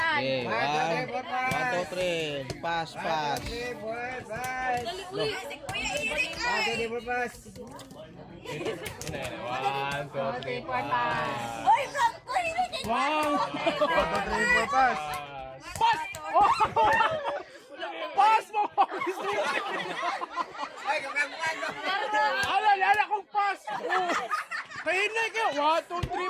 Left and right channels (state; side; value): identical; both; correlation 1.00